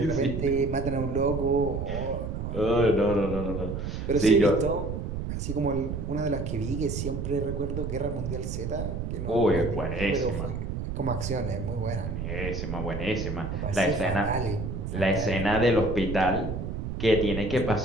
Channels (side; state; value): right; noise; rumble, 4 dB below the sound